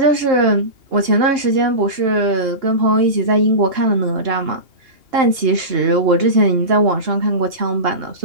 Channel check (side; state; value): left; late; 2.8 ms